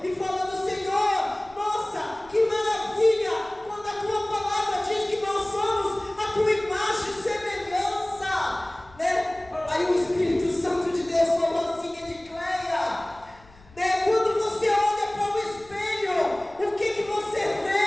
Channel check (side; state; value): left; noise; rumble, 25 dB below the sound